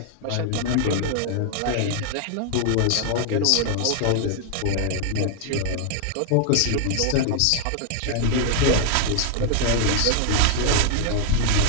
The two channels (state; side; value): different; both; correlation 0.00